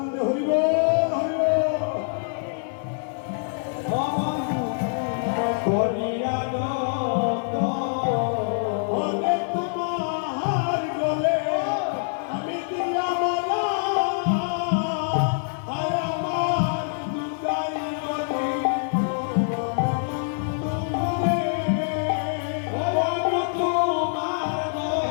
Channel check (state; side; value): silent; right; digital silence